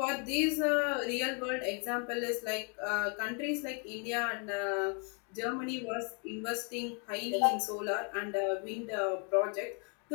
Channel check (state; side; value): quieter; right; 37.6 dB